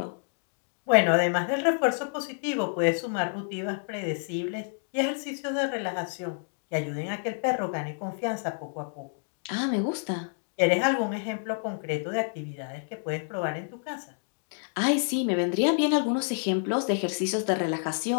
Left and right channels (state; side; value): silent; right; 59 dB below the other